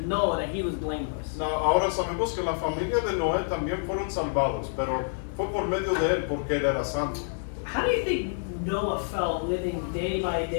Noah that he was blameless. no, ahora sabemos que la familia de Noé también fueron salvados, pero fue por medio de él porque él era santo. How do you think Noah felt living day by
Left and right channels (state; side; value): silent; right; digital silence